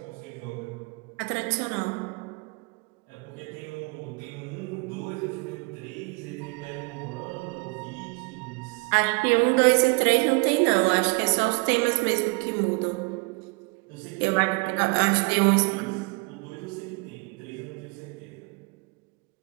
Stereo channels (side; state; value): left; quieter; 29.1 dB